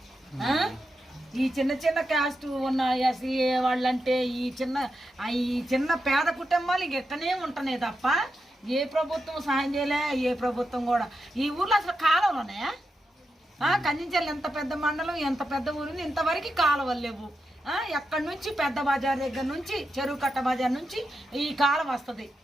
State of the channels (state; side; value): normal; both; correlation 0.87